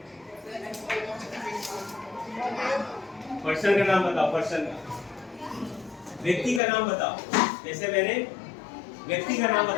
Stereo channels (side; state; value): right; drops out; at 6.6 s